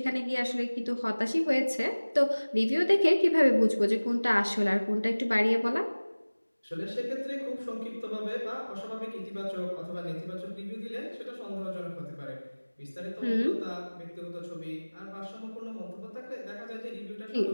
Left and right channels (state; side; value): inverted; both; correlation -1.00